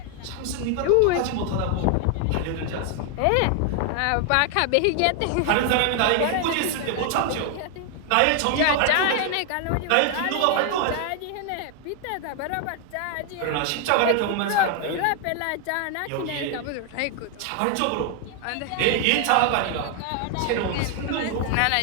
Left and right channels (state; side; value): different; both; correlation 0.00